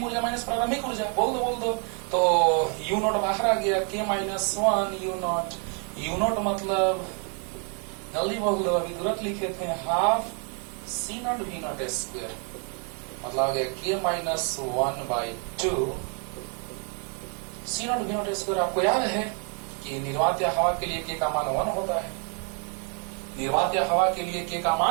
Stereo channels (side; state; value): left; quieter; 39.3 dB